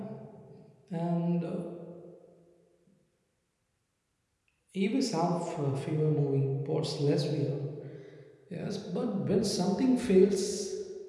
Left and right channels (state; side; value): identical; both; correlation 1.00